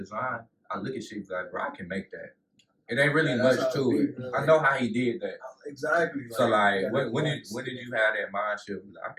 I look at shit like, bro, I can make that. It ain't really much to it. Really. I know how he did that. Exactly. So like, when did you have that mindset? Like, I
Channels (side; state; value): both; identical; correlation 1.00